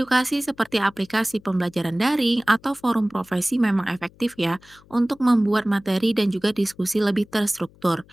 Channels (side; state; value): left; noise; hum, 27 dB below the sound